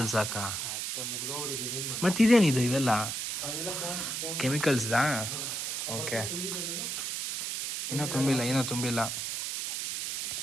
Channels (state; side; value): noise; right; hiss, 3 dB below the sound